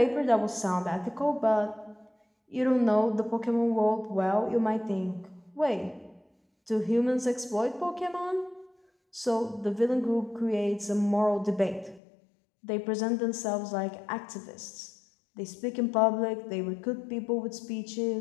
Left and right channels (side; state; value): right; drops out; at 12.0 s